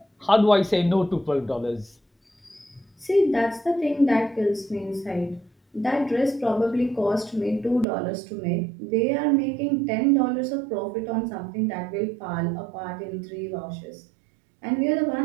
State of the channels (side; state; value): left; drops out; at 7.9 s